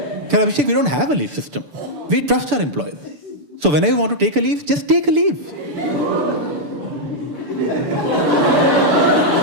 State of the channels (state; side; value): late; left; 6.9 ms